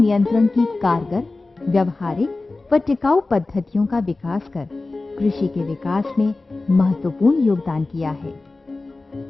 की कारगर, व्यवहारिक व टिकाऊ पद्धतियों का विकास कर कृषि के विकास में महत्वपूर्ण योगदान किया है।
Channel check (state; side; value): quieter; right; 3.3 dB